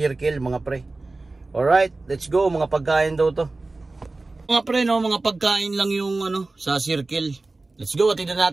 mga pre. Alright, let's go. Mga pagkain daw to mga pre, no, mga pagkain lang yung ano sa Circle. Let's go, atinan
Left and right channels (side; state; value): left; quieter; 3.3 dB